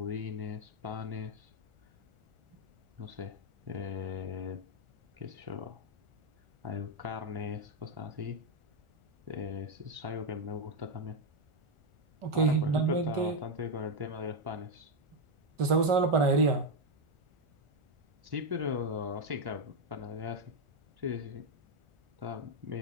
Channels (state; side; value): late; left; 1.4 ms